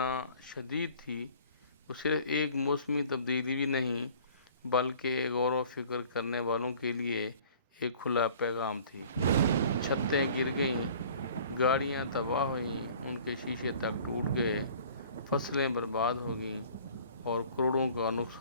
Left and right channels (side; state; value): both; inverted; correlation -0.50